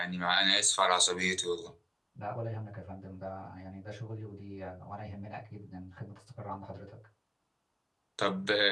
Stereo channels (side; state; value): both; identical; correlation 1.00